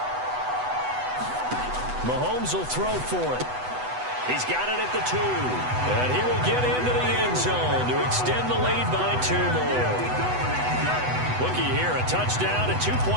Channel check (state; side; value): late; left; 8.0 ms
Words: Mahomes will throw for it. He's got it at the 2. And he will get into the end zone to extend the lead by 2 more. Looky here, a touchdown, a